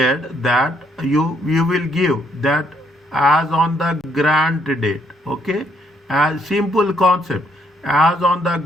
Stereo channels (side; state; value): both; normal; correlation 0.72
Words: that you will give that as on the grant date, okay? As simple concept. As on the